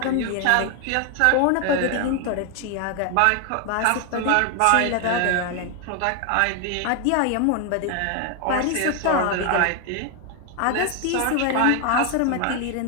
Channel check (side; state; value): both; different; correlation 0.01